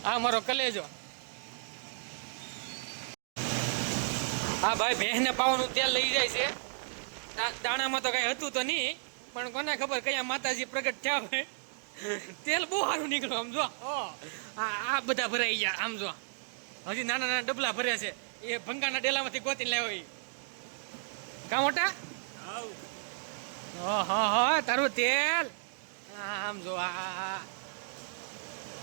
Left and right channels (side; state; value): left; silent; digital silence